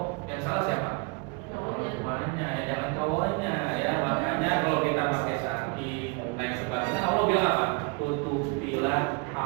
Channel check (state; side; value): quieter; left; 30.9 dB